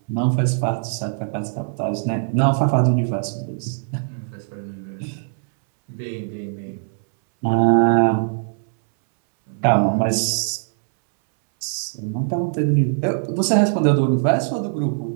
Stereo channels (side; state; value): left; silent; 65 dB below the other